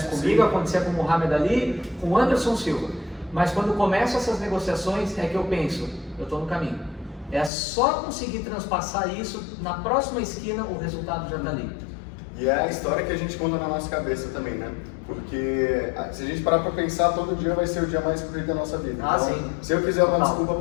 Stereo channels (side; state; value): right; drops out; at 7.5 s